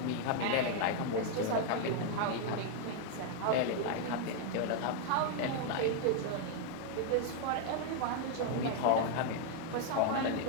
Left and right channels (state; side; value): different; both; correlation 0.00